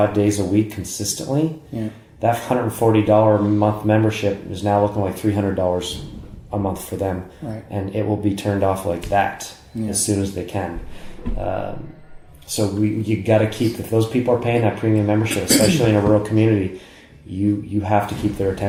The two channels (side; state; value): both; identical; correlation 1.00